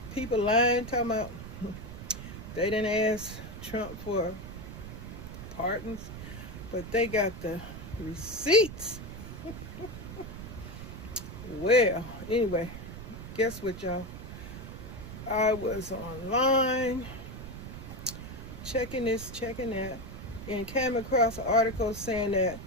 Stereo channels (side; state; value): right; noise; rumble, 10 dB below the sound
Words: People lying, talking about they didn't ask Trump for pardons, but they got the receipts. Well, anyway, guess what, y'all? I was online checking this, checking that, and came across an article saying that